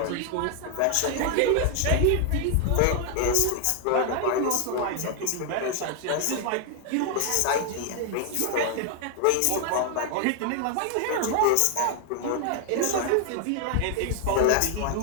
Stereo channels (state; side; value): different; both; correlation 0.00